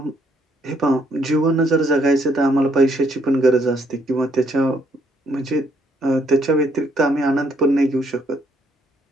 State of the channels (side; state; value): both; normal; correlation 0.69